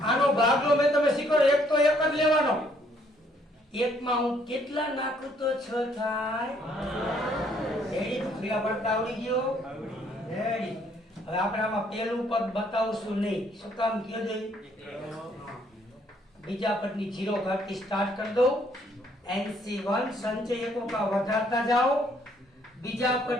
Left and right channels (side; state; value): both; normal; correlation 0.66